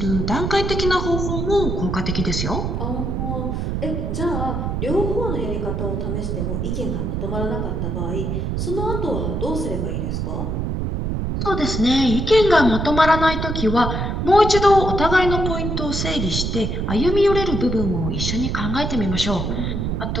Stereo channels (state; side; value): noise; right; rumble, 1 dB below the sound